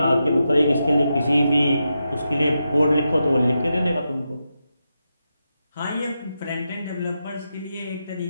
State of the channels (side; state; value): both; inverted; correlation -0.87